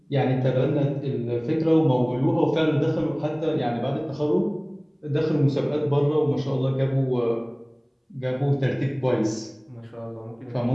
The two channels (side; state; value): both; identical; correlation 1.00